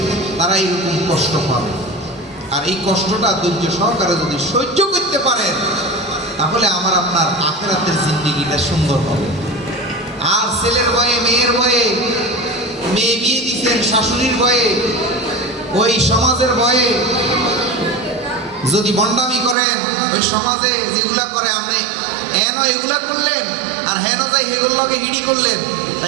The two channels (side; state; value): left; drops out; at 19.6 s